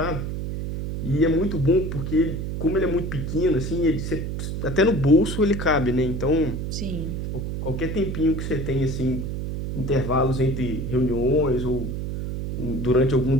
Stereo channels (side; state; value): right; noise; hum, 4 dB below the sound